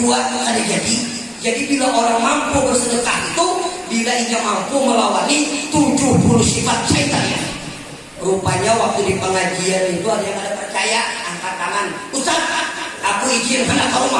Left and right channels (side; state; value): both; identical; correlation 1.00